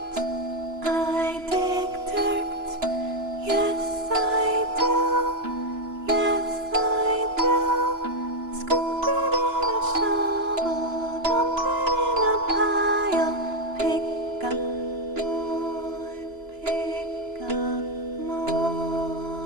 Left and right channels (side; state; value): left; late; 2.9 ms